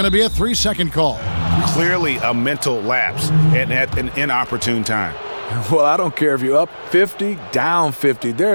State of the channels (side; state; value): both; inverted; correlation -1.00